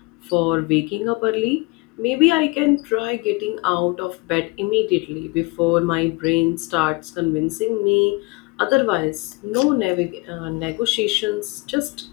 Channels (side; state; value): right; quieter; 25.7 dB